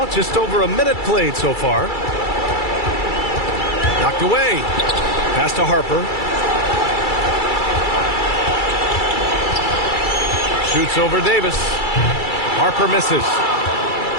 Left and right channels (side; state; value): right; late; 2.3 ms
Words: just over a minute played so far. Knocked away. Pass to Harper. Shoots over Davis. Harper misses.